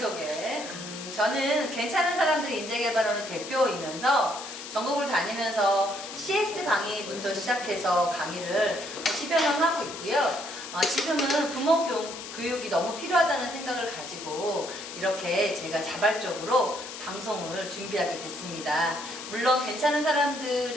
저는 괜찮은 사람들 인재개발원의 대표이면서 전국을 다니면서 CS 강의부터 시작해서 강의를 10여 년 하고 있고요. 지금은 부모 교육이 너무 필요하다는 생각을 가지고 이렇게 제가 자발적으로 방송을 준비하게 됐습니다. 물론 괜찮은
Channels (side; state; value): left; noise; hiss, 10 dB below the sound